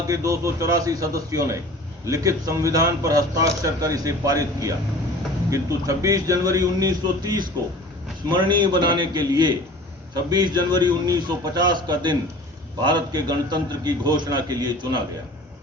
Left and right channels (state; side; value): normal; both; correlation 0.42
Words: के 284 सदस्यों ने लिखित संविधान पर हस्ताक्षर कर इसे पारित किया, किंतु 26 जनवरी 1930 को स्मरणीय बनाने के लिए 26 जनवरी 1950 का दिन भारत के गणतंत्र की घोषणा के लिए चुना गया।